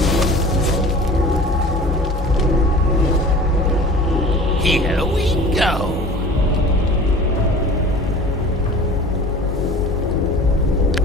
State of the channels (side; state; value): both; normal; correlation 0.42